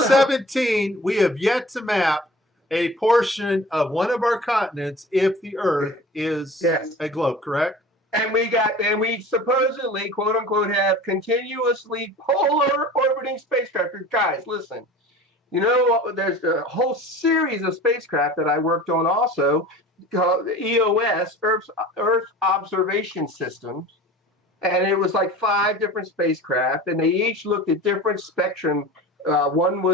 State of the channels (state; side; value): normal; both; correlation 0.40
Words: we have yet to map a portion of one of our continents if the Earth is a globe, correct? And we supposedly, quote unquote, have continuously polar orbiting spacecraft. Guys, listen. There's a whole series of spacecraft that I worked on also, called EOS, Earth Observation Systems. And it was like 5 different spacecraft, and they each looked at different spectrum. One